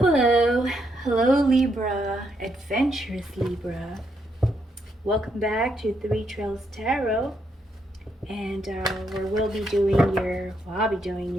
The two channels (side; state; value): both; normal; correlation 0.77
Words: Hello, hello Libra, adventurous Libra. Welcome back to Three Trails Tarot, and where I'll be doing your